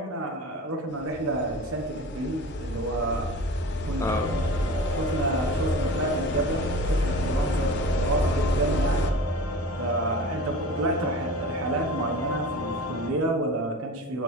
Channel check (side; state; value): both; normal; correlation 0.36